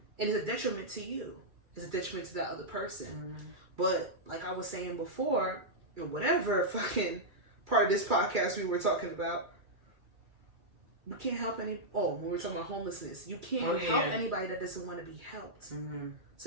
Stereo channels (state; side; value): late; left; 2.3 ms